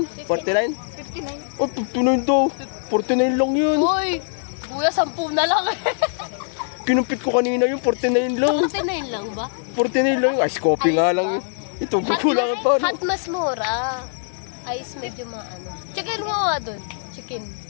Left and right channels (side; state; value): right; silent; 64 dB below the other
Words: 49? 59. Oh, 59 daw. 49 lang yun. Uy! Kuya, 10 na lang eh. Kinumpit ko kanina yung 49 lang. 49 lang ba? 49 lang. Ice coffee nga lang. Ito, kukulangan pa. Hot mas mura. Ice medyo maano. Chicken mo nga dun. Chicken.